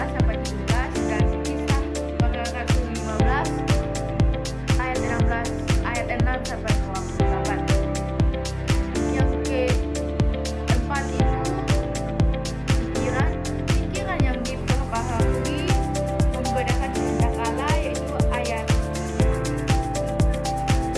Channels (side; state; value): both; identical; correlation 1.00